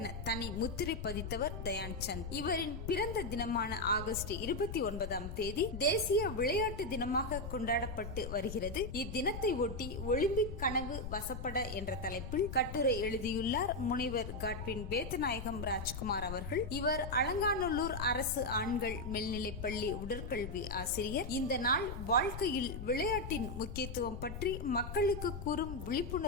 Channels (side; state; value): left; noise; rumble, 7 dB below the sound